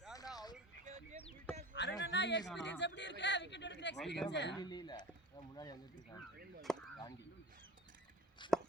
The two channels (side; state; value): both; normal; correlation 0.36